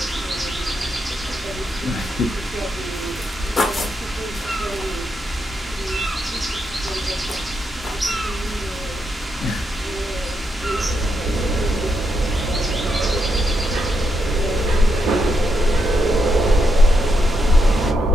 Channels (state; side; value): normal; both; correlation 0.82